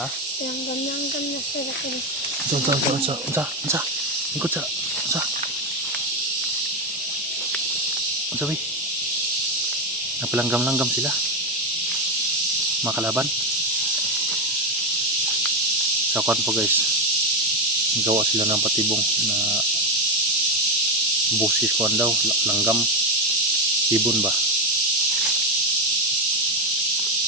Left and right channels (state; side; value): normal; both; correlation 0.10